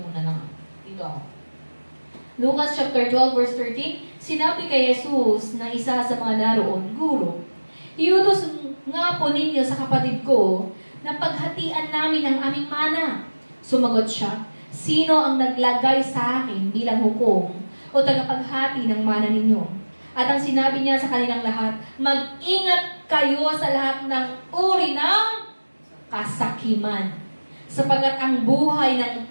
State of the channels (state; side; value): inverted; both; correlation -1.00